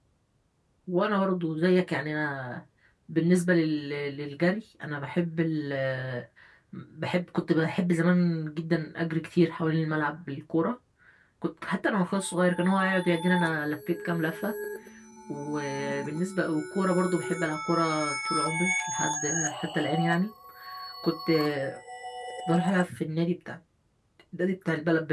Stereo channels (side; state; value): both; identical; correlation 1.00